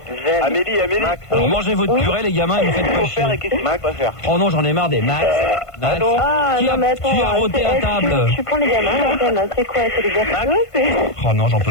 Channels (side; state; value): right; late; 1.5 ms